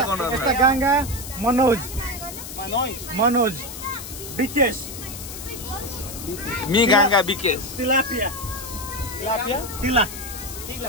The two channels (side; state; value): left; noise; hiss, 10 dB below the sound